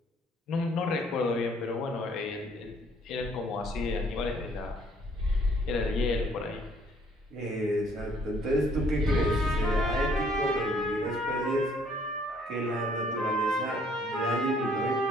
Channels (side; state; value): both; normal; correlation 0.62